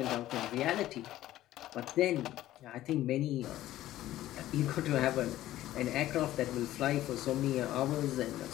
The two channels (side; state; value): right; quieter; 14.4 dB